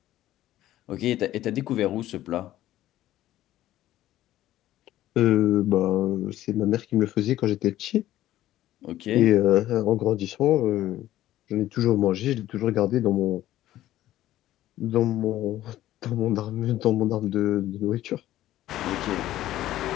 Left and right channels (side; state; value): right; quieter; 14.0 dB